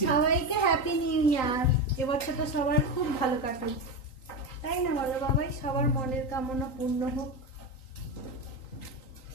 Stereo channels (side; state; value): right; late; 3.9 ms